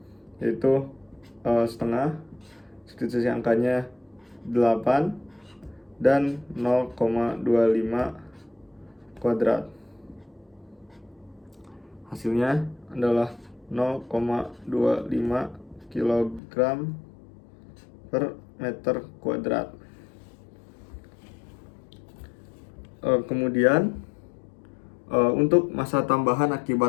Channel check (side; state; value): right; drops out; at 16.4 s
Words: yaitu setengah, substitusi angkanya 8 dan 0,25 kuadrat. Hasilnya adalah 0,25 kg per meter kuadrat. Kemudian untuk massa tambahan